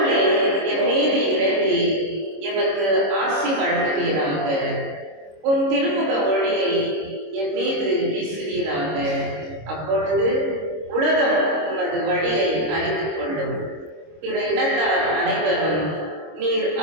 என் மீது இறங்கி எமக்கு ஆசி வழங்குவீராக. உம் திருமுக ஒளியை என் மீது வீசுவீராக. அப்பொழுது உலகம் உமது வழியை அறிந்து கொள்ளும். பிற இனத்தார் அனைவரும் நீர்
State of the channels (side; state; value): left; late; 26 ms